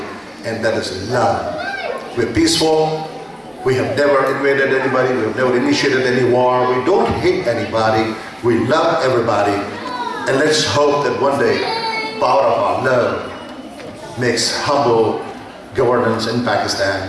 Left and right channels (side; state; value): both; identical; correlation 1.00